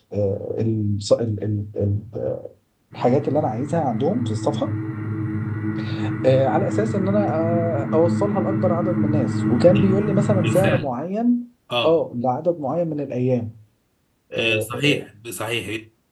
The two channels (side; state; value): both; identical; correlation 1.00